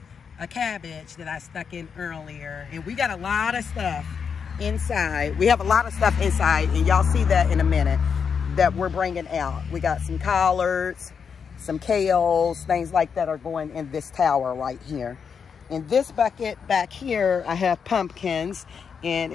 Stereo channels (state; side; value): quieter; right; 6.5 dB